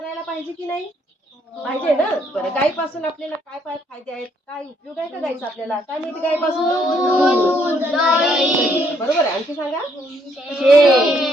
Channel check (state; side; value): normal; both; correlation 0.70